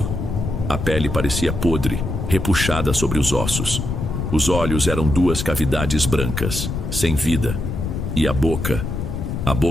A pele parecia podre, repuxada sobre os ossos. Os olhos eram duas cavidades brancas, sem vida. E a boca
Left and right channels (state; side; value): noise; left; rumble, 4 dB below the sound